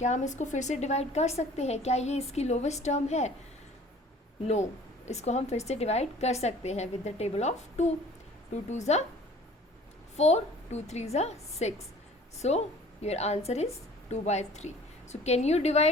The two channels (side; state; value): both; normal; correlation 0.49